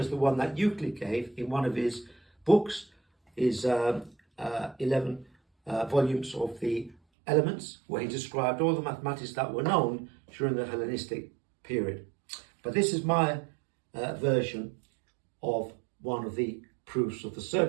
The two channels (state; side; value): drops out; left; at 7.0 s